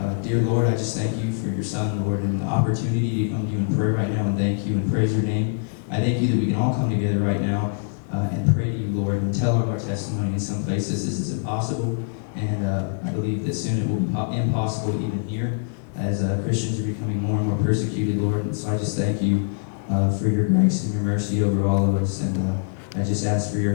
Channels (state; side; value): silent; right; digital silence